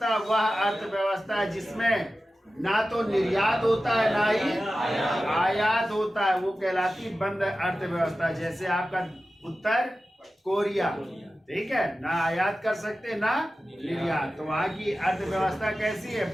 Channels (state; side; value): normal; both; correlation 0.94